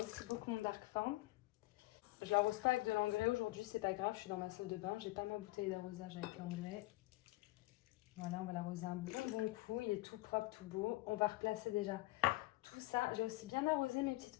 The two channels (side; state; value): right; quieter; 19.9 dB